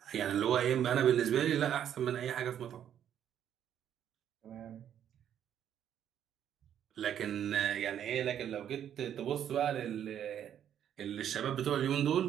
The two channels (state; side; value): quieter; left; 9.8 dB